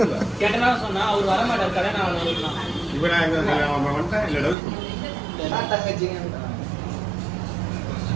கேட்டனா சொன்னா அவர் வர மாட்டார் கல்யாணம் ஆகணும். இப்போ நான் வந்துட்டேன் இல்லை டவுட்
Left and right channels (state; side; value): drops out; left; at 4.5 s